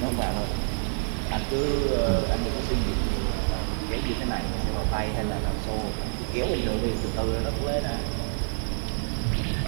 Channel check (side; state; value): left; silent; digital silence